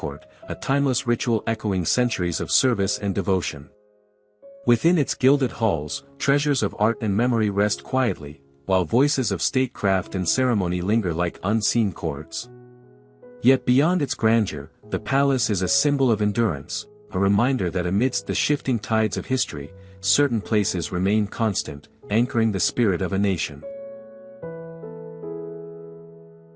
a timeless ritual echoing centuries of service and devotion. Within its gilded halls, treasures of art and memory rest quietly, while voices of statecraft and ceremony linger like unseen chords. Yet beyond its grandeur, the palace is a symbol of endurance, a reminder that amidst the shifting tides of history, certain places remain constant, anchoring the spirit of a nation.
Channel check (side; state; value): both; identical; correlation 1.00